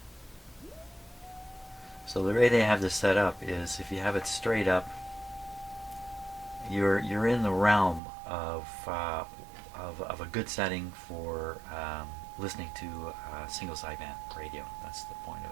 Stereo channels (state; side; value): drops out; left; at 8.0 s